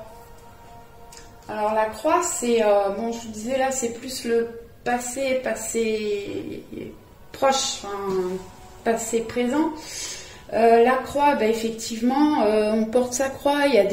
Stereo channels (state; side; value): identical; both; correlation 1.00